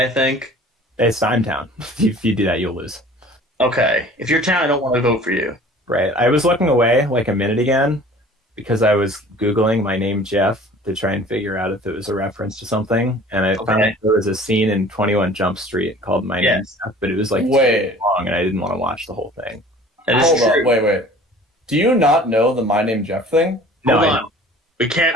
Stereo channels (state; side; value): normal; both; correlation 0.47